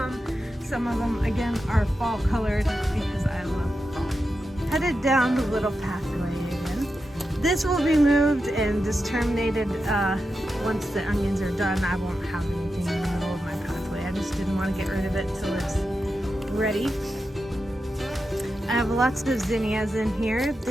Some of them, again, are fall colored because I love fall. Headed down the little pathway again. This will be moved and just terminated once the onions are done. I won't have anything in the middle of my pathway. I just didn't want to get rid of it till it's ready. I have lots of zinnias in here.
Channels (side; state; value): both; normal; correlation 0.89